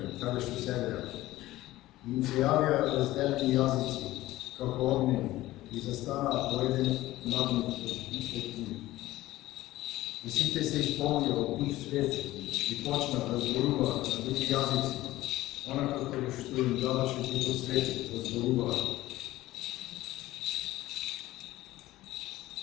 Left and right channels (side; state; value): right; quieter; 16.6 dB